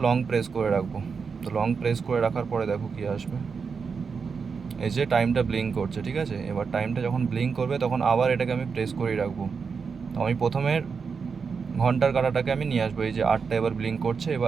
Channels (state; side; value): quieter; left; 5.6 dB